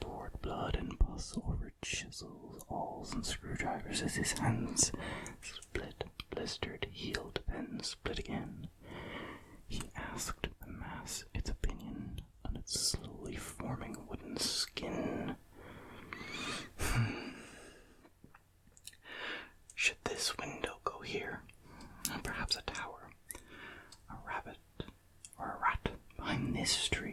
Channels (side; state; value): both; identical; correlation 1.00